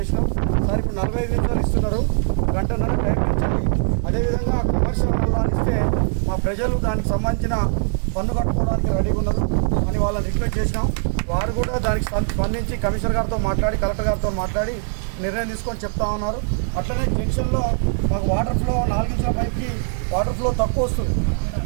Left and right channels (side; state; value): left; silent; 65 dB below the other